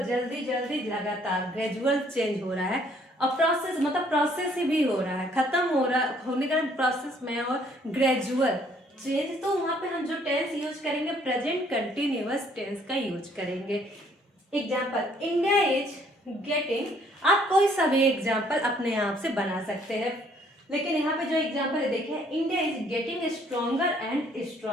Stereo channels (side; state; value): both; normal; correlation 0.63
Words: जल्दी लगातार, ग्रेजुअल चेंज हो रहा है। और प्रोसेस मतलब प्रोसेस ही भी हो रहा है, खत्म हो रहा होने का प्रोसेस में, और ग्रेजुअल चेंज, तो वहां पे हम जो टेंस यूज करेंगे प्रेजेंट कंटिन्यूअस टेंस का यूज करेंगे। एग्जाम्पल, इंडिया इज गेटिंग, आप कोई सा भी एग्जाम्पल अपने आप से बना सकते हैं, लेकिन यहाँ पे जो एग्जाम्पल है देखिए, India is getting stronger and